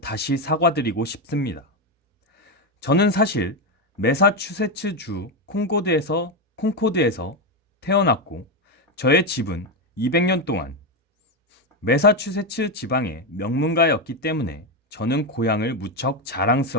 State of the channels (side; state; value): both; normal; correlation 0.09